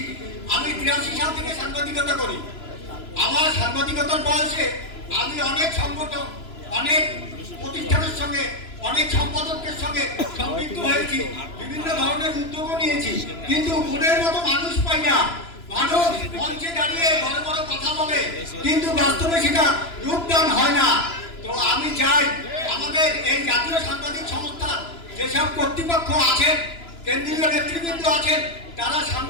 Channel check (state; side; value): late; right; 3.0 ms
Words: আমি 83 সাল থেকে সাংবাদিকতা করি। আমার সাংবাদিকতার বয়সে আমি অনেক সংগঠন, অনেক প্রতিষ্ঠানের সঙ্গে, অনেক সম্পাদকদের সঙ্গে সম্পৃক্ত হয়েছি, বিভিন্ন ধরনের উদ্যোগও নিয়েছি, কিন্তু মনের মতো মানুষ পাই না। মানুষ মঞ্চে দাঁড়িয়ে বড় বড় কথা বলে, কিন্তু বাস্তবে সেটা রূপদান হয় না। তো আমি চাই আমাদের এই জাতীয় সাংবাদিক সংস্থা যেসব কর্তৃপক্ষ আছেন, কেন্দ্রীয় নেতৃবৃন্দ আছেন, তারা